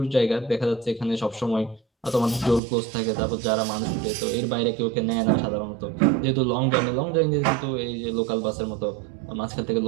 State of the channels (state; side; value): drops out; left; at 2.6 s